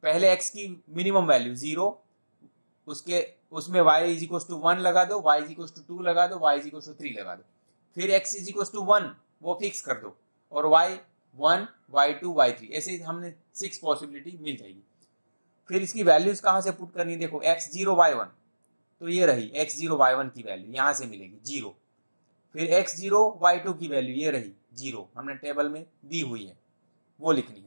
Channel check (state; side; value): inverted; both; correlation -1.00